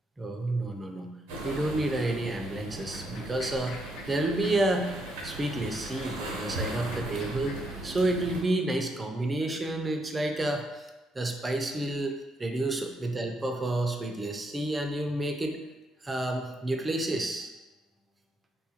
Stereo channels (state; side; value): normal; both; correlation 0.77